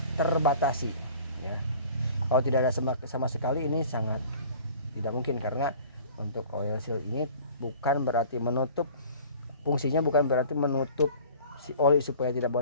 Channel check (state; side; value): inverted; both; correlation -0.46